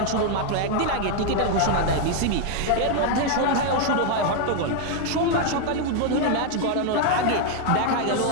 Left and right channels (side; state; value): both; different; correlation 0.00